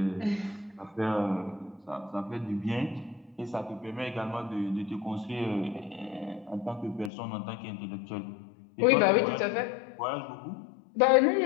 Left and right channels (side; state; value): right; drops out; at 7.1 s